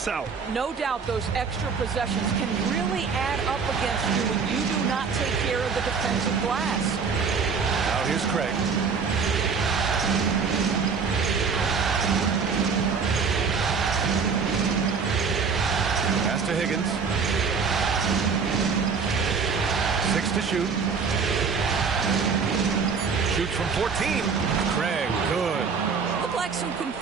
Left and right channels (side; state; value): left; quieter; 5.5 dB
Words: out. No doubt those extra possessions can really add up against you when you do not take care of the defensive glass. Now here's Craig. Pass to Higgins. 6 to shoot. Shoots from 14. Craig, good. Looked like some